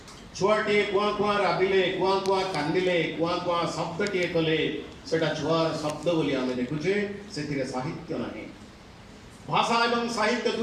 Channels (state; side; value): identical; both; correlation 1.00